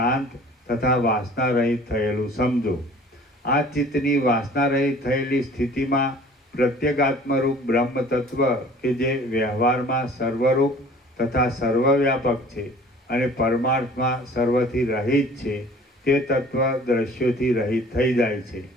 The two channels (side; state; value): both; normal; correlation 0.49